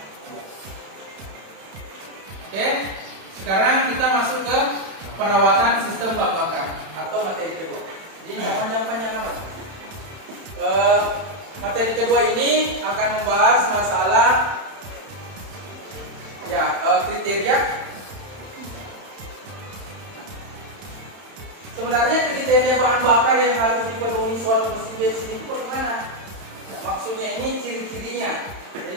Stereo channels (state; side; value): late; left; 31 ms